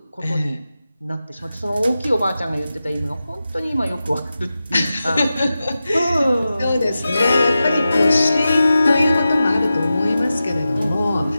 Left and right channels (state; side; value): inverted; both; correlation -0.93